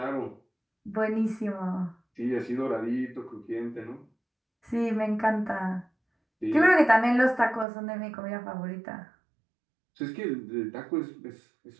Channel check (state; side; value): drops out; left; at 7.7 s